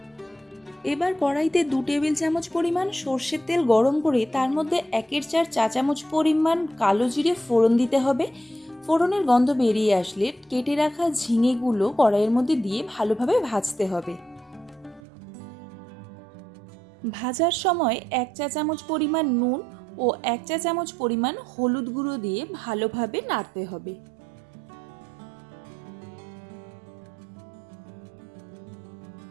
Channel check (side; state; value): left; drops out; at 15.0 s